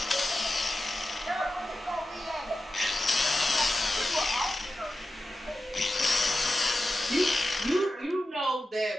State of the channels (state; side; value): normal; both; correlation 0.93